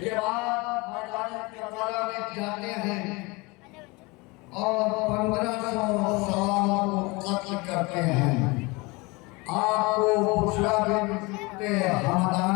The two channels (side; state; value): right; quieter; 25.4 dB